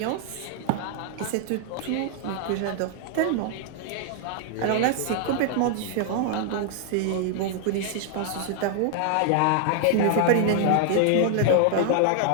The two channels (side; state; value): both; different; correlation 0.00